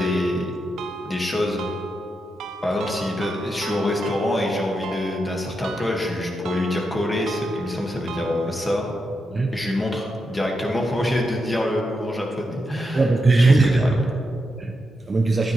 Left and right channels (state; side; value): normal; both; correlation 0.85